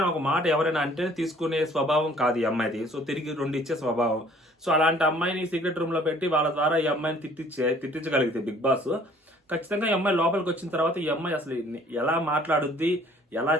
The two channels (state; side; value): normal; both; correlation 0.56